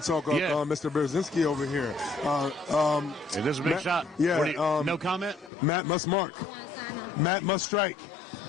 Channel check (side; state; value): right; drops out; at 5.5 s